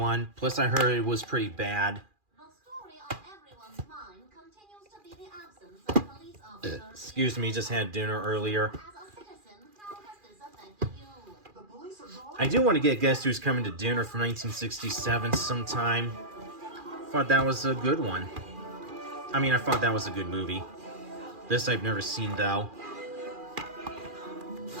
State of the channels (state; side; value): late; left; 2.4 ms